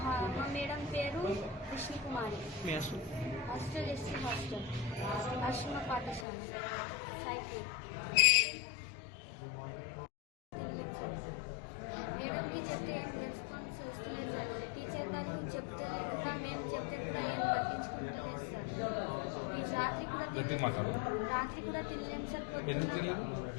మేడం పేరు విష్ణుకుమారి. హాస్టల్ ఎస్సీ హాస్టల్, ఆశ్రమ పాఠశాల, సాయిపూర్. మేడంకి చెప్తే ఏం రెస్పాన్స్ వస్తలేదు సార్. టీచర్ వాళ్ళు చెప్తే కూడా మేము చెప్తే కూడా ఏం పట్టించుకుంటలేదు సార్. రాత్రి కూడా తినలేను సార్.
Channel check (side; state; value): right; drops out; at 6.2 s